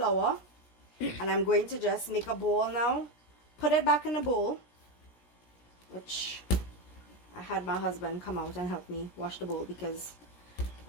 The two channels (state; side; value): late; right; 17 ms